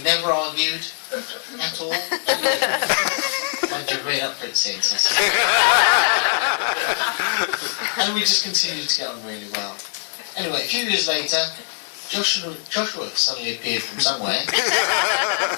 never argued at all. Mind you, made up for it since. And we just continued to get on really well. Anyway, a few years later, Joshua suddenly appeared from somewhere,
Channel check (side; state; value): right; silent; digital silence